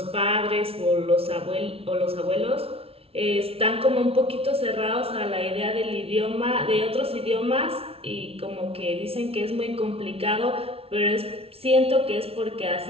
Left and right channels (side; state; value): left; late; 0.28 ms